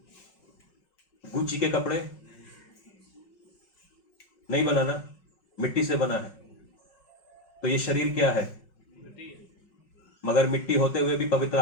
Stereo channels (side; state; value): right; late; 5.4 ms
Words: Gucci के कपड़े नहीं बनाना, मिट्टी से बना है। तो ये शरीर क्या है? मगर मिट्टी होते हुए भी पवित्र